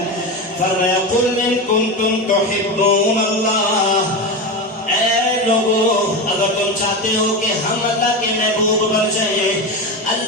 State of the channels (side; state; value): both; normal; correlation 0.20